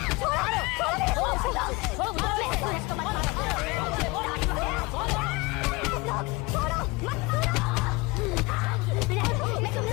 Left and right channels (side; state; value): right; quieter; 24.4 dB